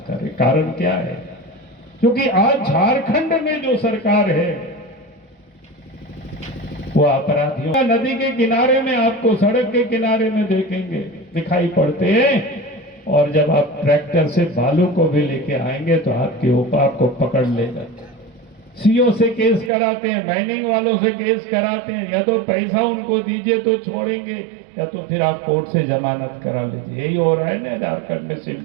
कर रहे। कारण क्या है? क्योंकि आज झारखंड में जो सरकार है वो अपराधियों नदी के किनारे में आपको सड़क के किनारे में देखेंगे दिखाई पड़ते हैं, और जब आप ट्रैक्टर से बालू को भी लेके आएंगे तो आपके ऊपर आपको पकड़ लेगा। सीओ से केस कराते हैं, माइनिंग वालों से केस कराते हैं, या तो पैसा उनको दीजिए तो छोड़ेंगे, या तो फिर आप कोर्ट से जमानत करा लीजिए। यही हो रहा है ना झारखंड में,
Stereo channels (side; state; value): left; drops out; at 19.7 s